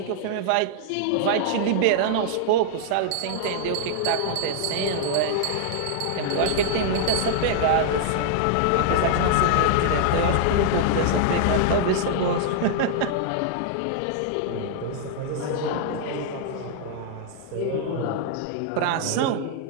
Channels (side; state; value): both; different; correlation -0.01